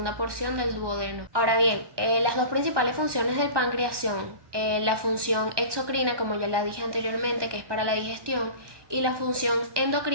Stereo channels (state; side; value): late; left; 1.1 ms